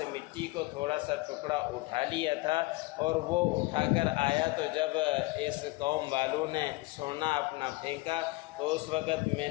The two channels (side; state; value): right; quieter; 22.3 dB